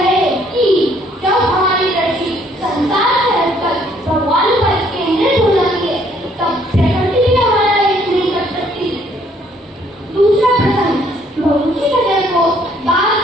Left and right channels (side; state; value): both; normal; correlation 0.64